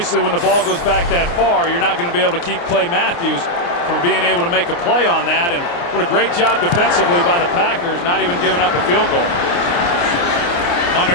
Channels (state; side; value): late; right; 29 ms